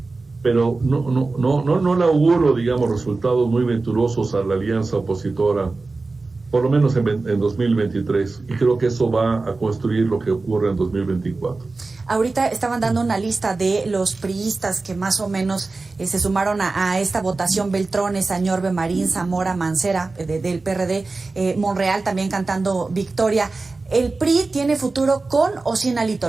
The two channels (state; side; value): quieter; left; 3.6 dB